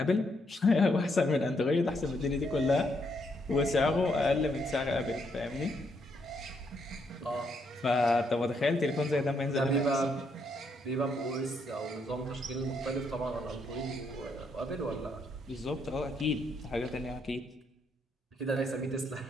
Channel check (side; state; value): both; normal; correlation 0.75